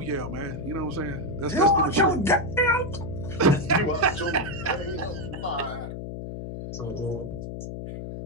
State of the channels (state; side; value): noise; left; hum, 7 dB below the sound